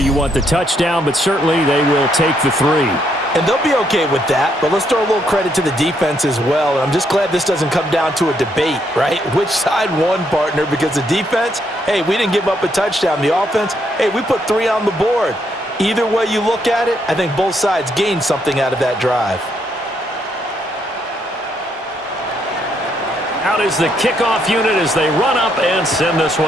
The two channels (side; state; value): both; normal; correlation 0.74